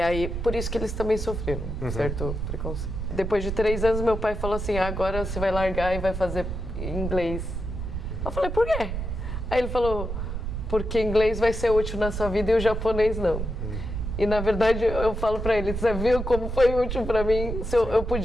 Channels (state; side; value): noise; right; rumble, 4 dB below the sound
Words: por isso que eles também sofreram certo preconceito. Depois de 3 anos, meu pai falou assim, agora você vai largar e vai fazer inglês. Eu falei, por quê? Aí ele falou, porque inglês vai ser útil na sua vida e o japonês não. E na verdade, eu falo pra ele, você viu como foi útil pra mim? Eu